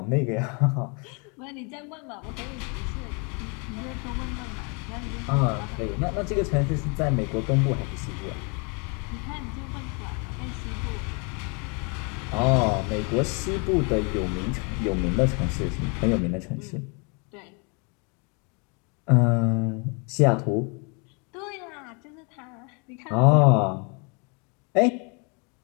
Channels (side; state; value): right; quieter; 33.9 dB